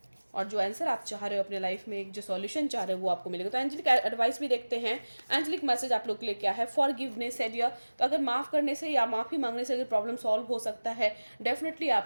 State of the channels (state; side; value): inverted; both; correlation -1.00